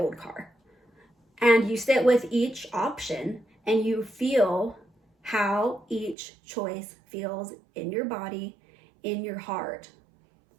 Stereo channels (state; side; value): drops out; left; at 6.2 s